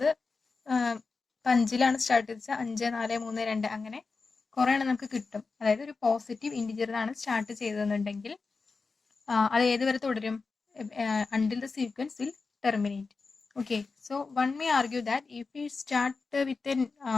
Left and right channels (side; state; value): right; quieter; 4.3 dB